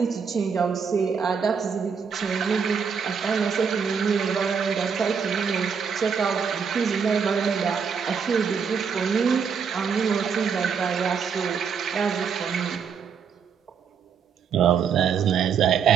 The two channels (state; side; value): quieter; left; 6.5 dB